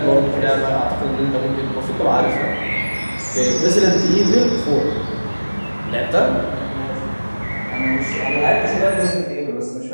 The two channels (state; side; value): inverted; both; correlation -1.00